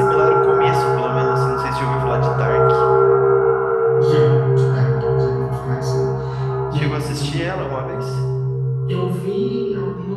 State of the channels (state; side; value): identical; both; correlation 1.00